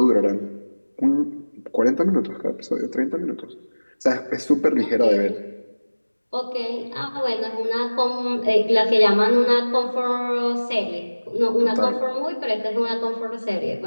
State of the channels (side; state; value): both; inverted; correlation -1.00